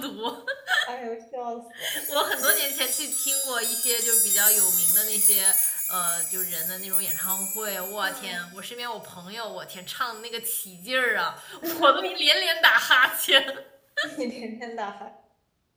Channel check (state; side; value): identical; both; correlation 1.00